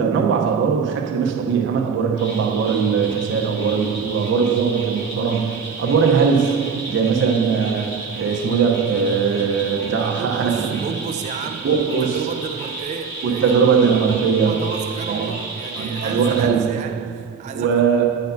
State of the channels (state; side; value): quieter; left; 5.7 dB